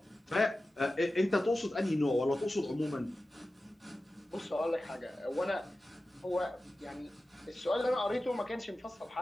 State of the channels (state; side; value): normal; both; correlation 0.94